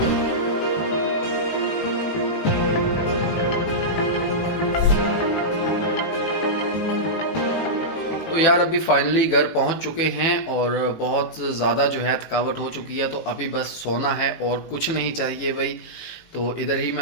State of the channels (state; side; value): late; right; 18 ms